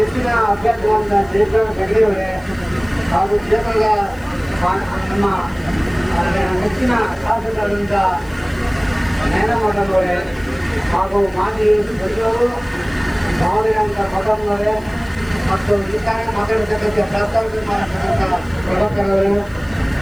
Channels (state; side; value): noise; left; hiss, 27 dB below the sound